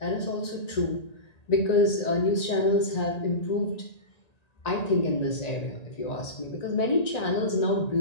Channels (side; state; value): right; late; 1.9 ms